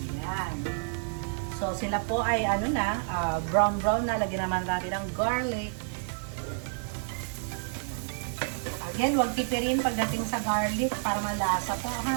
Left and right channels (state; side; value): silent; left; digital silence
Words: Ayan. So, sila po ay brown na. Lagyan naman natin ng garlic. Again, huwag tipirin pagdating sa garlic para malasa po